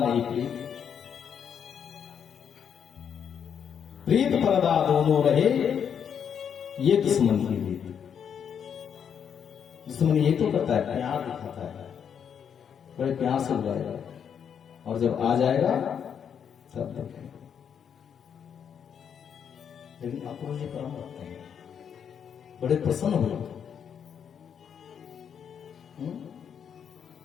प्रीत पर्दा दोनों रहे, ये दुश्मन की रीत। दुश्मन ये तो करता है, प्यार दिखाता है, बड़े प्यार से बुलाएगा, और जब आ जाएगा सब देखेंगे। लेकिन अक्रूर जी परम भक्त हैं, बड़े प्रसन्न हुए,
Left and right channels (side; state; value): right; quieter; 7.9 dB